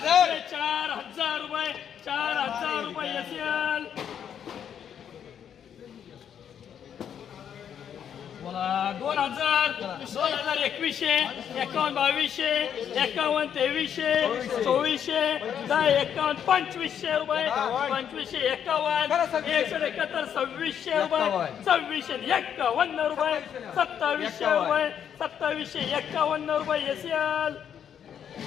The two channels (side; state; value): right; quieter; 8.7 dB